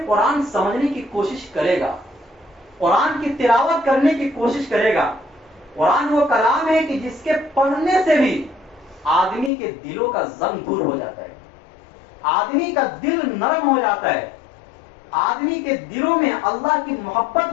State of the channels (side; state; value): right; drops out; at 9.5 s